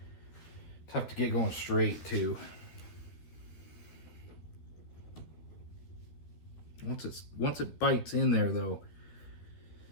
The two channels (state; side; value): late; right; 13 ms